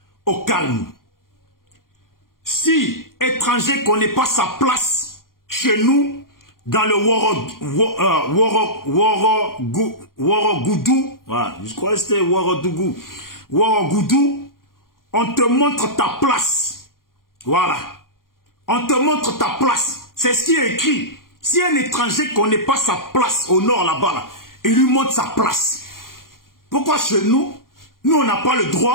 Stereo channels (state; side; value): late; right; 0.91 ms